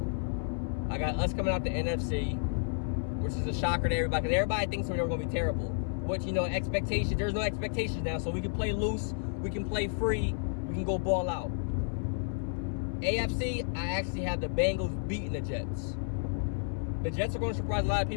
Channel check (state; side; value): silent; right; 57 dB below the other